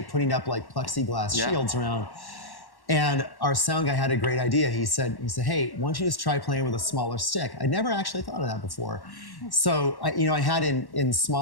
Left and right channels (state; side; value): late; right; 1.1 ms